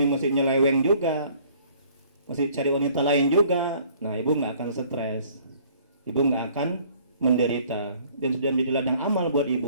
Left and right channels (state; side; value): inverted; both; correlation -0.57